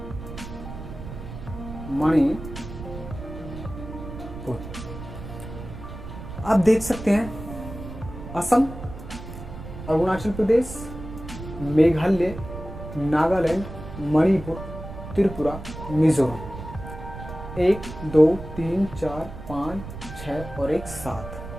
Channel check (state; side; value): noise; right; rumble, 11 dB below the sound